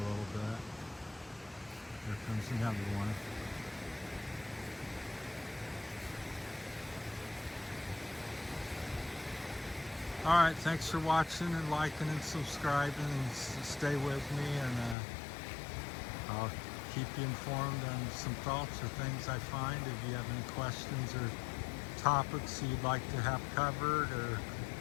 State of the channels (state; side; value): drops out; right; at 15.0 s